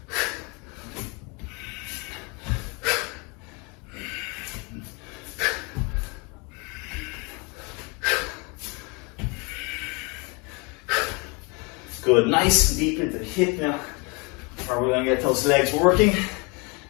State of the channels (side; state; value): right; quieter; 30.3 dB